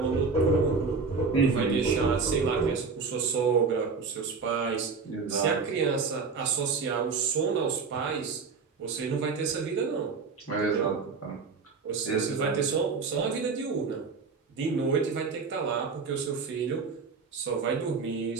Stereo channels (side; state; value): left; quieter; 4.9 dB